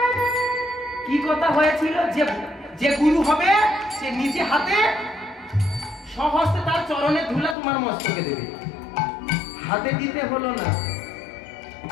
কি কথা হয়েছিল? যে গুরু হবে সে নিজে হাতে সহস্তে তার চরণে ধুলা তোমার মস্তকে দেবে, হাতে দিতে হলো না।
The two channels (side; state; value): right; drops out; at 7.6 s